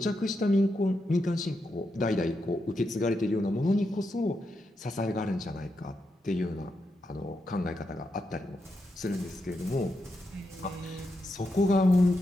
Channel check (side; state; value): both; normal; correlation 0.85